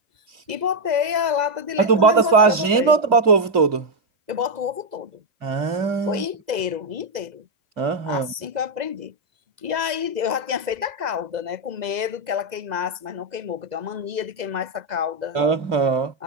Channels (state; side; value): late; left; 2.0 ms